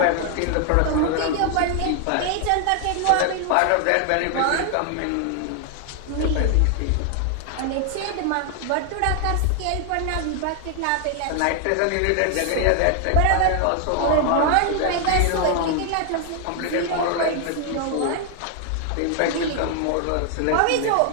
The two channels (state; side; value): different; both; correlation 0.00